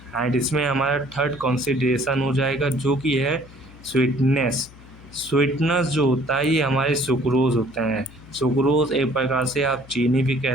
एंड इसमें हमारा थर्ड कंसीडरेशन हो जाएगा जो कि है स्वीटनेस। स्वीटनेस जो होता है ये हमारे सुक्रोज होते हैं। सुक्रोज एक प्रकार से आप चीनी भी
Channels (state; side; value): noise; left; hum, 21 dB below the sound